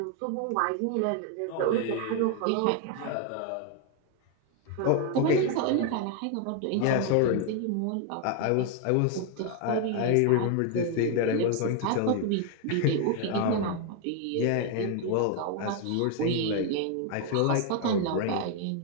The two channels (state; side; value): different; both; correlation 0.01